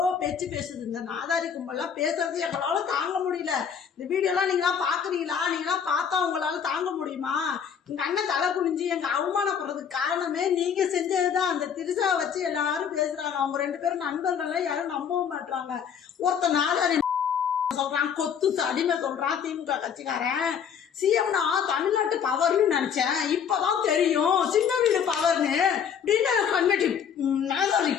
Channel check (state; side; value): quieter; right; 7.6 dB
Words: பேச்சு பேசுது. இந்த நாதாரி கும்பல்லாம் பேசுறது எங்களால தாங்க முடியல. இந்த வீடியோ எல்லாம் நீங்களா பாக்குறீங்களா? நீங்களா பார்த்தா உங்களால தாங்க முடியுமா? எங்க அண்ணன் தலை குனிஞ்சு எங்க அவமானப்படுறதுக்கு காரணமே நீங்க செஞ்சதுதான். அந்த திரிசா வச்சு எல்லாரும் பேசுறாங்க. அவங்க 2 பேரும் நண்பர்கள், யாரும் நம்பவும் மாட்டாங்க. ஒருத்த நாதாரி சொல்றான், கொத்து அடிமை சொல்றான் திமுக கட்சிக்காரன். சிஎம்னா தமிழ்நாட்டு பவர்னு நினைச்சேன், இப்பதான் தெரியும் சின்னவீடு பவர்னு அப்படின்னு கண்மெட்டி நாதாரி